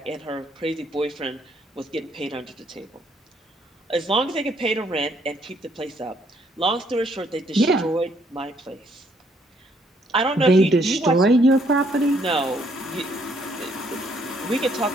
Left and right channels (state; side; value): normal; both; correlation 0.68